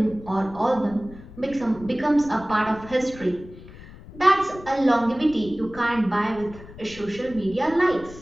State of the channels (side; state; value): left; noise; rumble, 17 dB below the sound